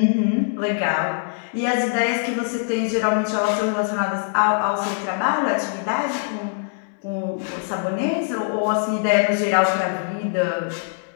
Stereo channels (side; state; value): right; silent; digital silence